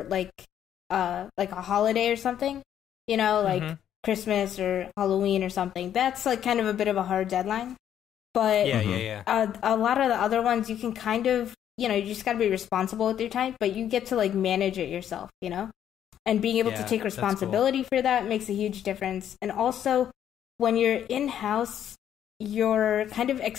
like a holiday or something, you know, like Christmas or Halloween or something. That's like kind of a bit of a hard deadline. But a lot of the other ones you can kind of, you know, you just got to be responsible with your time, but you get to like manage it yourself, you know, and being able to take responsibility for that makes a huge difference. And also when you're in-house, you're kind of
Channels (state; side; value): quieter; right; 10.1 dB